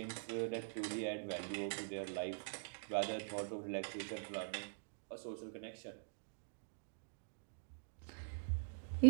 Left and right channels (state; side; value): silent; left; digital silence